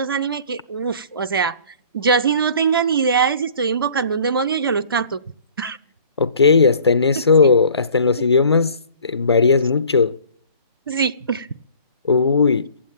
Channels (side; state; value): both; inverted; correlation -0.50